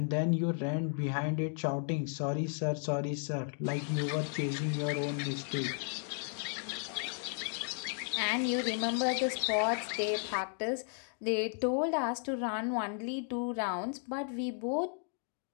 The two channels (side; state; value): right; silent; 55 dB below the other